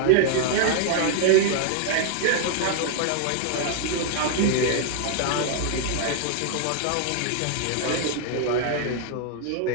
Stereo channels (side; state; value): both; different; correlation 0.00